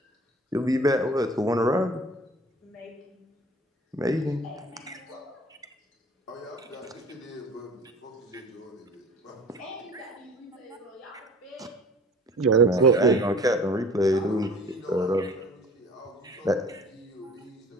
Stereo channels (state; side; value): normal; both; correlation 0.45